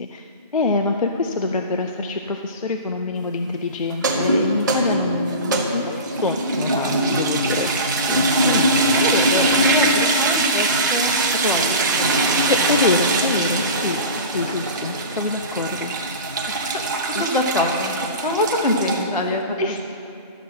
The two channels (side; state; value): both; inverted; correlation -0.30